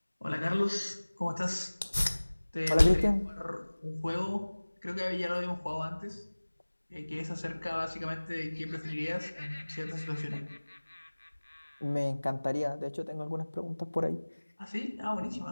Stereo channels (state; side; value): inverted; both; correlation -1.00